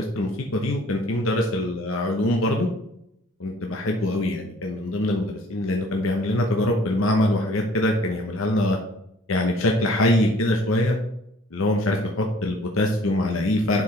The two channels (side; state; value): both; normal; correlation 0.55